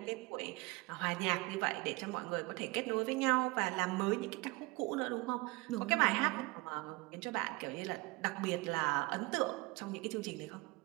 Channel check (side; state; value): left; quieter; 23.5 dB